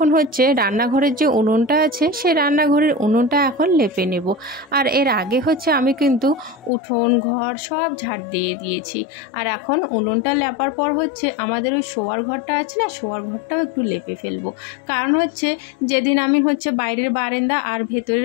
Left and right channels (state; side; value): drops out; right; at 6.7 s